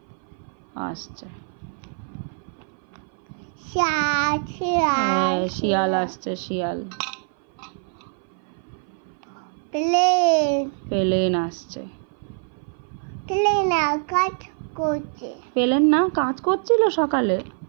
আসছে। হ্যাঁ, শিয়াল আসছে, শিয়াল। প্লেন। প্লেন আসছে। প্লেন আকাশ করছে। প্লেন না কাজ করছিল সকালে?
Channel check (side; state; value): left; silent; 57 dB below the other